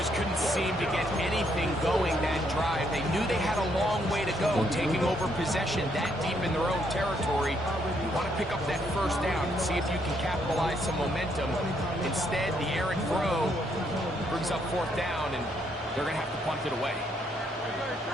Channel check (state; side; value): normal; both; correlation 0.73